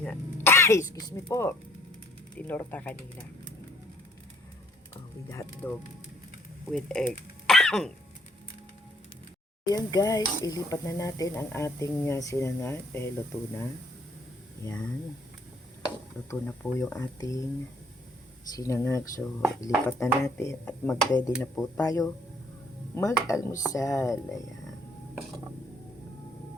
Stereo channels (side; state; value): both; normal; correlation 0.63